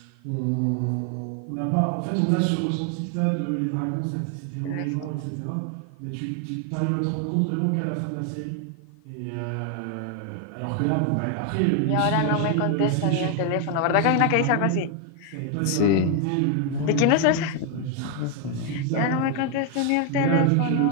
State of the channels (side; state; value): both; different; correlation 0.01